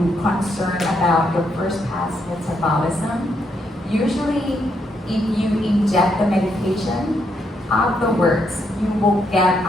concern about your first pass metabolism. Usually, if you inject the medication, afterwards, you will get a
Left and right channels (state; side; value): normal; both; correlation 0.77